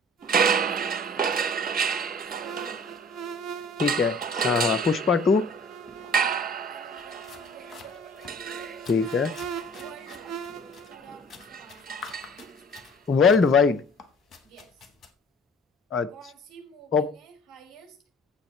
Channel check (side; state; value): both; normal; correlation 0.49